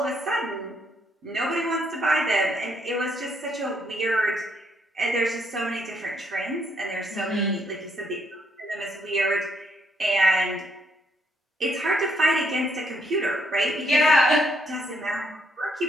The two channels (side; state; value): both; normal; correlation 0.73